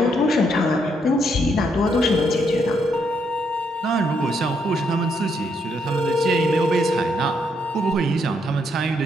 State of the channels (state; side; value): normal; both; correlation 0.75